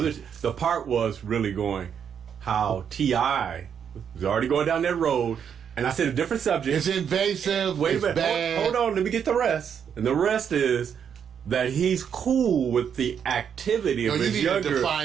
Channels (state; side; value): quieter; left; 7.8 dB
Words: part was really going how T.I. was already going down that road, and I said a different subject. It's invasive. Wait a minute. Bad. Hold on. Let me get the rest. And the rest is that he's cool with the activity of his younger. You need to